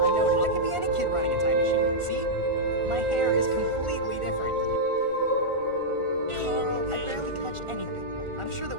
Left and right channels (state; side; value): late; left; 1.4 ms